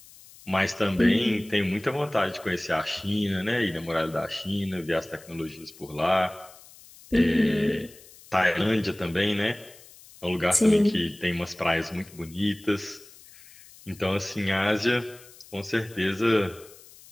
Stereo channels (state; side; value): noise; left; hiss, 22 dB below the sound